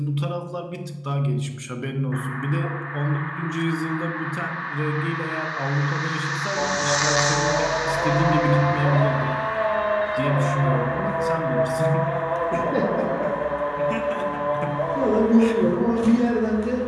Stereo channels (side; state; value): both; identical; correlation 1.00